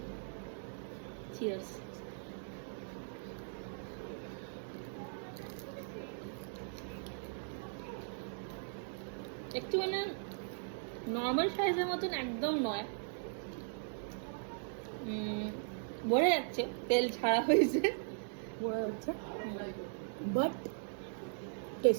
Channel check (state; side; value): silent; left; digital silence